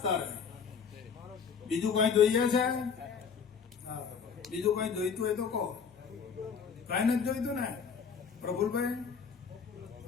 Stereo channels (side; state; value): right; quieter; 6.3 dB